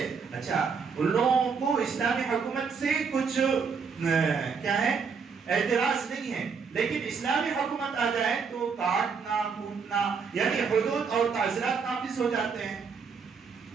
اچھا ان لوگوں کو اسلامی حکومت سے کچھ کیا ہے اعتراض نہیں ہے، لیکن اسلامی حکومت آ جائے تو کاٹنا کوٹنا یعنی حدود اور تعزیرات نافذ ہو جاتے ہیں۔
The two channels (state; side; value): quieter; left; 5.7 dB